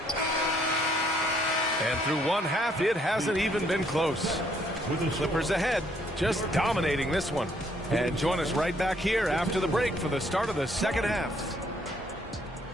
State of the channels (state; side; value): normal; both; correlation 0.67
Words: And through one half, it hasn't even been close. Clippers ahead, just dominating this one. And join us right back here after the break for the start of the second half.